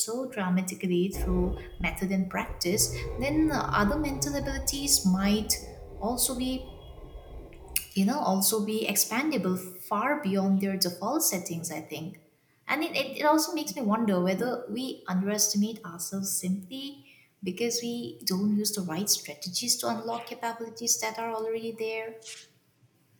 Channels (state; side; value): identical; both; correlation 1.00